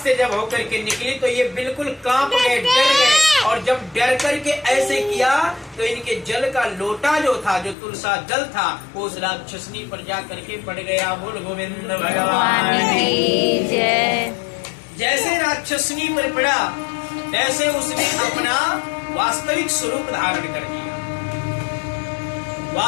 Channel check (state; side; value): drops out; right; at 7.8 s